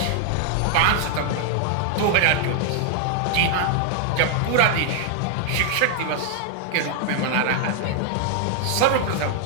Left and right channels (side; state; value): both; different; correlation 0.00